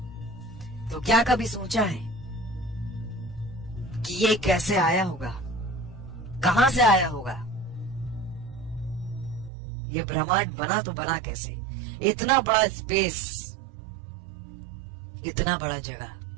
तो क्या कभी सोचा है कि ये कैसे आया होगा, कहां से आया होगा? ये ब्रह्मांड बना तो बना कैसे? इतना बड़ा स्पेस, इतना बड़ा जगह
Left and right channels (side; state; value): left; drops out; at 9.5 s